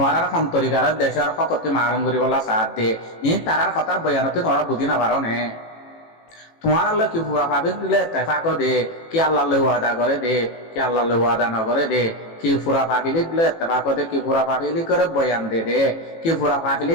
আর অন্তরিকালের দেশের ফকতি মারণ করি বললা সাথ দে ইন তারার কথার বয়ানতে তোমরা বুঝি না পারো নে তোমার আল্লাহ কি পুরা পাবে দিলে তেফাক দে কি আল্লাহ ওয়াদা করে দে কি আল্লাহ ওয়াদা ন করে দে কি পুরা পাবিলি দিলে তেফাক দে কি পুরা পাবিলি করে বয়ান দে দে কি পুরা পাবিলি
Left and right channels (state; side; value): late; right; 18 ms